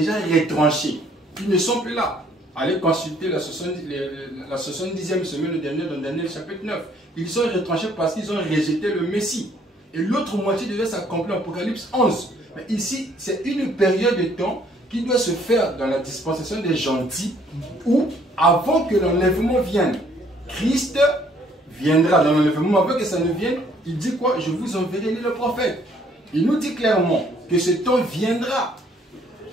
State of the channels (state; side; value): normal; both; correlation 0.63